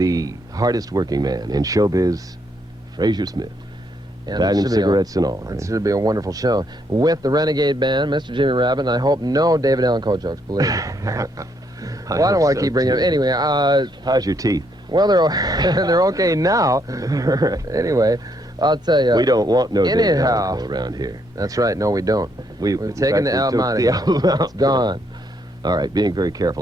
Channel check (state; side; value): normal; both; correlation 0.73